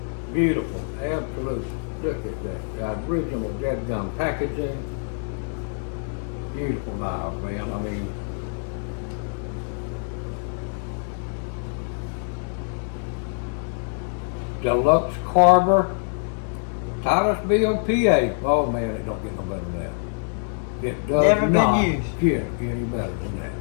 Beautiful, absolutely. Look at that, the original dead gum packaging. Beautiful knives, man. I mean, Deluxe Carver, Titusville, PA. Oh man, it don't get no better than that. It does Never been not used. get any better than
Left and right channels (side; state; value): right; silent; 60 dB below the other